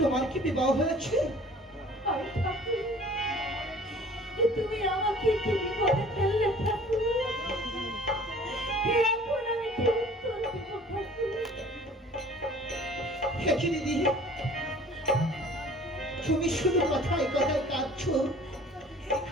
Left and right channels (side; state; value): both; normal; correlation 0.49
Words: কি বিবাহ হয়েছে? আরে ঠাকুর, তুমি আমাকে কি বিপদে ফেললে ঠাকুর? এখন আমি কি উত্তর দেব ঠাকুর? দেখি দিদি, তুমি শুধু কথায় কথায় কাঁদছো,